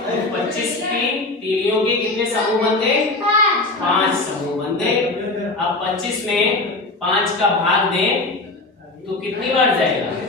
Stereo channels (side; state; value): right; quieter; 3.1 dB